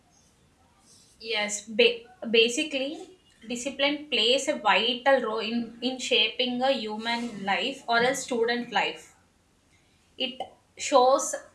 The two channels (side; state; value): both; identical; correlation 1.00